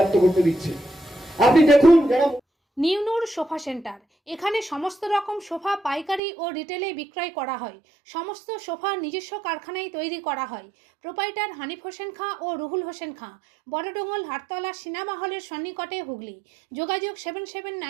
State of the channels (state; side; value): drops out; left; at 6.2 s